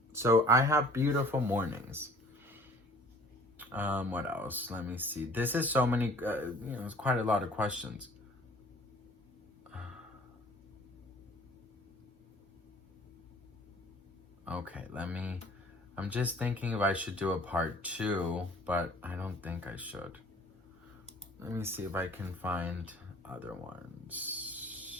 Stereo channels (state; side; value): normal; both; correlation 0.51